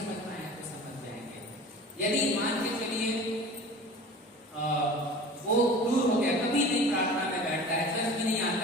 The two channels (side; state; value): both; normal; correlation 0.39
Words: पाए तो समझ जाएंगे। यदि मान के चलिए वो दूर हो गया, कभी नहीं प्रार्थना में बैठता है, चर्च में नहीं